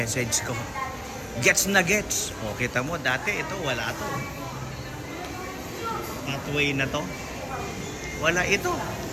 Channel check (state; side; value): identical; both; correlation 1.00